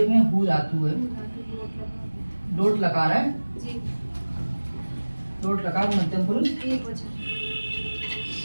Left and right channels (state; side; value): inverted; both; correlation -1.00